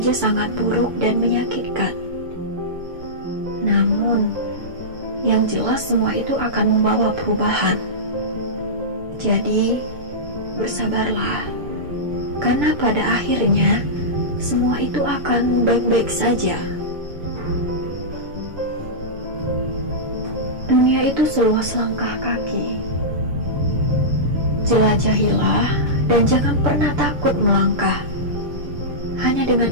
sangat buruk dan menyakitkan. Namun, yang jelas semua itu akan membawa perubahan. Jadi, bersabarlah, karena pada akhirnya semua itu akan baik-baik saja. Dunia itu seluas langkah kaki. Jelajahilah dan jangan pernah takut melangkah. Hanya dengan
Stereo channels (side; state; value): left; late; 6.8 ms